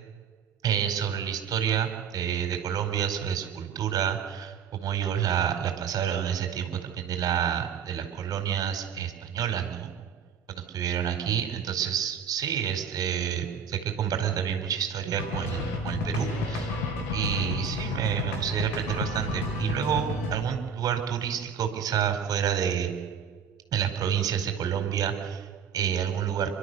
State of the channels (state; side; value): quieter; left; 6.8 dB